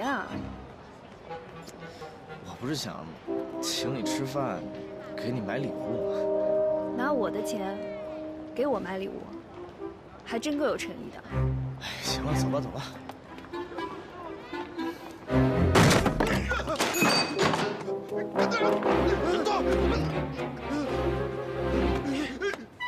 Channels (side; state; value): both; identical; correlation 1.00